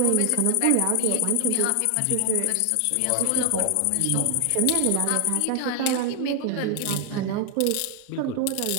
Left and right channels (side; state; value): both; different; correlation 0.00